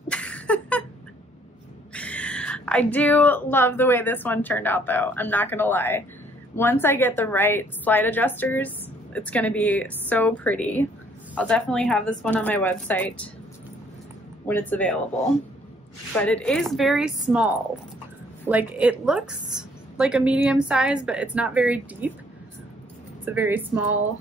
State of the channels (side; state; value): both; normal; correlation 0.63